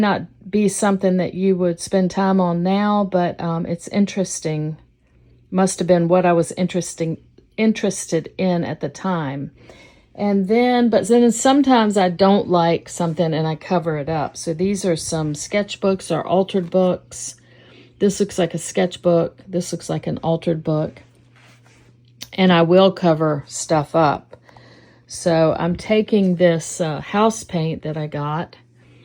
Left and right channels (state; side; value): identical; both; correlation 1.00